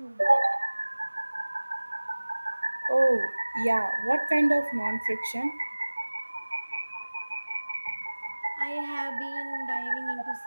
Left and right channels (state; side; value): inverted; both; correlation -1.00